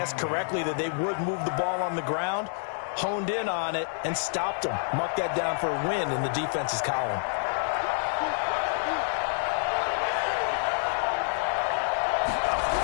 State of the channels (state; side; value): silent; right; digital silence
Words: correctly that they would move the ball on the ground, honed in on it, and stopped them. Mark that down for a win in the defense's column.